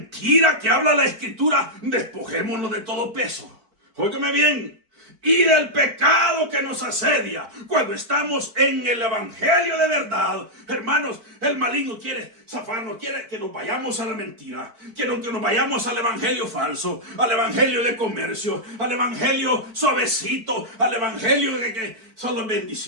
que habla la escritura, despojémonos de todo peso. Óigame bien, y del pecado que nos asedia. Cuando estamos en el evangelio de verdad, hermanos, el maligno quiere zafarnos, quiere que nos vayamos a la mentira, quiere que nos vayamos al evangelio falso, al evangelio de comercio, al evangelio suavecito, al evangelio de que solo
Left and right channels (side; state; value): left; late; 4.5 ms